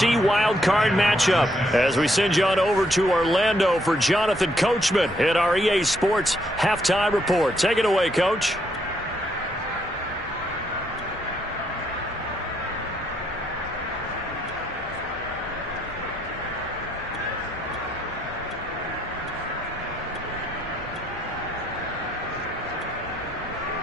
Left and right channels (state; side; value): normal; both; correlation 0.73